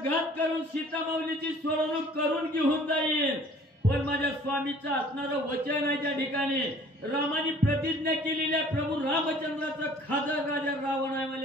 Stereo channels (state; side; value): normal; both; correlation 0.52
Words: करून सीतामाऊलीची सोडवणूक करून घेऊन जाईल पण माझ्या स्वामीचं असणारं वचन आहे त्या ठिकाणी रामाने प्रतिज्ञा केलेली आहे प्रभू रामचंद्राचं खादर राजा रावण आहे